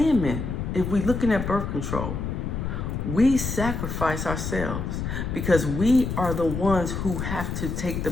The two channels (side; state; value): left; noise; rumble, 3 dB below the sound